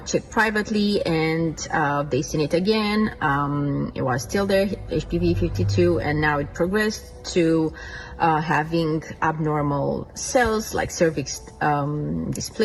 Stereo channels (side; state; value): both; identical; correlation 1.00